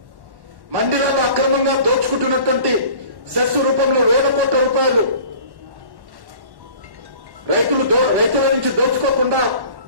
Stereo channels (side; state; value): left; late; 1.1 ms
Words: మండీలలో అక్రమంగా దోచుకుంటున్నటువంటి సెస్ రూపంలో వేల కోట్ల రూపాయలు రైతుల నుంచి దోచుకోకుండా